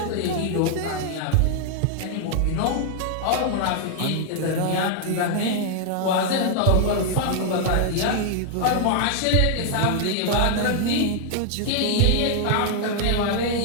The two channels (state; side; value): different; both; correlation -0.01